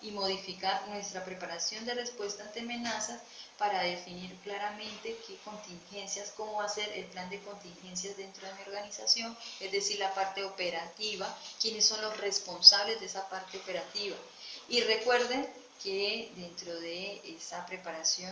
y modificar nuestra preparación de respuesta ante amenazas para definir claramente qué contingencias, cómo va a ser el plan de contingencias dentro de mi organización, es decir, la parte operativa, quiénes son los responsables de esa parte operativa. Y recuerden que dentro de esa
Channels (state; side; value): identical; both; correlation 1.00